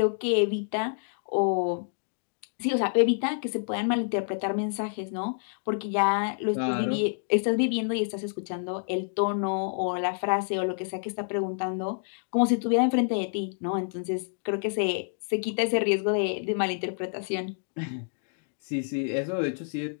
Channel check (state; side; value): silent; right; digital silence